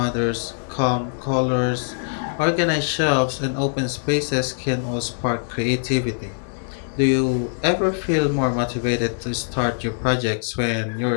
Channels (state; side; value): silent; right; 64 dB below the other